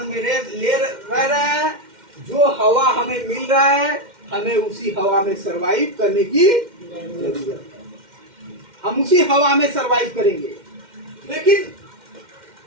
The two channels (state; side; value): late; left; 2.1 ms